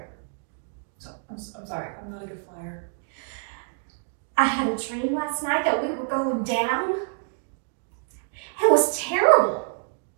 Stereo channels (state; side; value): silent; left; 60 dB below the other